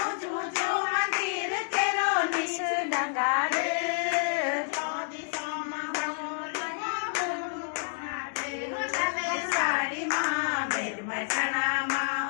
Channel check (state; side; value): silent; right; digital silence